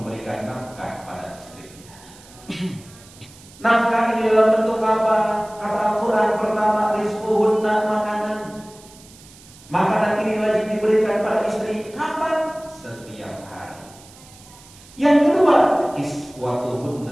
Nafkah ini dalam bentuk apa? Kata Al-Quran pertama, rizquhunna, makanan. Makanan ini wajib diberikan pada istri. Kapan? Setiap hari. Yang kedua,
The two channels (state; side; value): noise; right; hiss, 23 dB below the sound